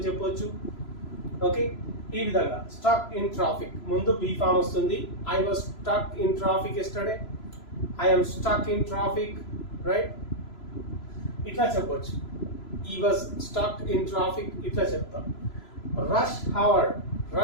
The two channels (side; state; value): right; late; 3.0 ms